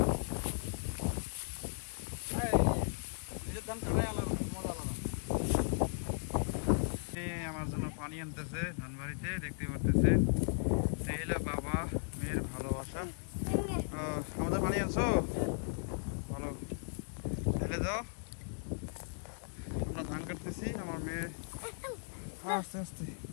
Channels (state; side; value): silent; right; digital silence